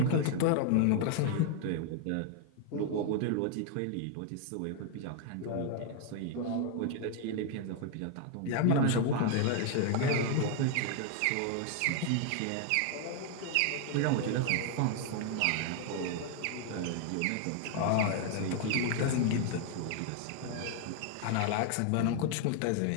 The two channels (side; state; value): both; different; correlation 0.00